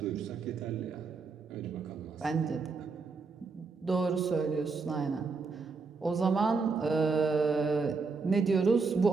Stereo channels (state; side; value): quieter; left; 4.5 dB